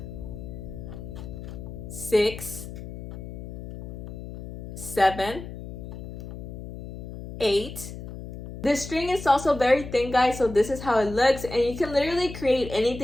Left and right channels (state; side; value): noise; left; hum, 10 dB below the sound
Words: sixth, seven, eight. The string is also very thin, guys, so this is how it looks, and you can literally create